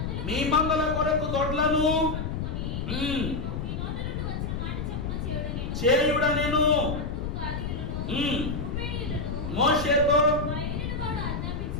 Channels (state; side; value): noise; left; rumble, 3 dB below the sound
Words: మీ మందల కొరకు దొడ్లను చేయుడనెను. మోషేతో